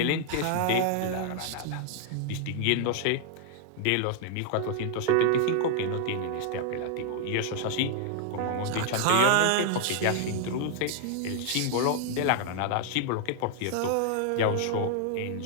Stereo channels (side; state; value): both; different; correlation 0.00